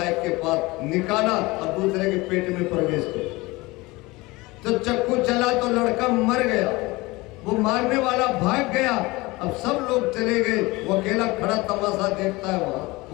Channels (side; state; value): right; quieter; 22.2 dB